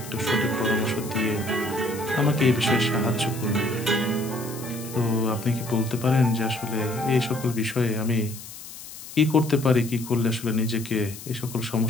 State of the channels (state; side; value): noise; left; hiss, 14 dB below the sound